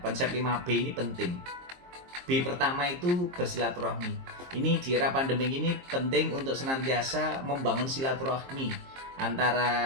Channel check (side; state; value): left; late; 23 ms